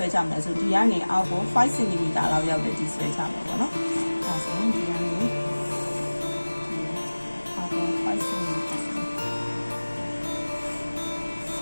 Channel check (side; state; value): both; inverted; correlation -1.00